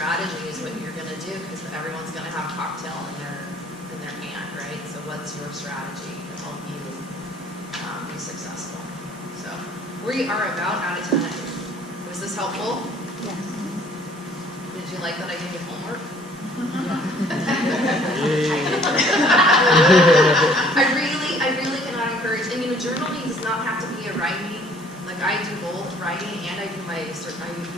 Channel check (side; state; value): both; normal; correlation 0.57